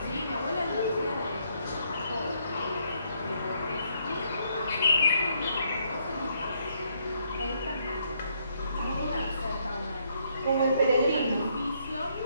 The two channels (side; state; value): both; inverted; correlation -0.72